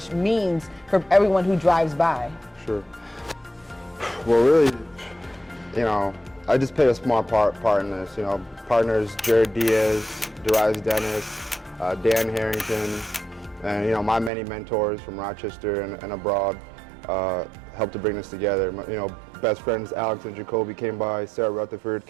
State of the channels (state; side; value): drops out; left; at 14.3 s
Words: means for everyone who drives by. Sure. Well, really, I just played a small part in this. Partners Jared Diaz, Darius Dennis, Dan Harrington, and my many mentors from Rochester and abroad helped to bring this together. Best friends Alex and Jacoby came by, Sarah Rutherford